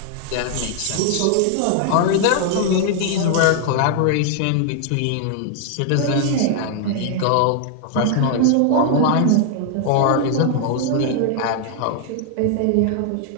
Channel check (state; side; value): different; both; correlation 0.00